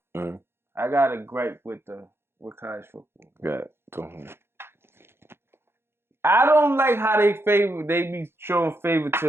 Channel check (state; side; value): late; left; 0.12 ms